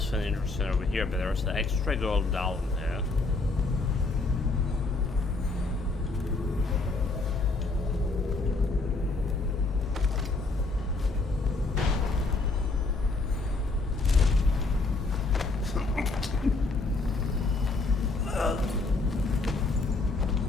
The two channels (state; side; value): quieter; right; 3.5 dB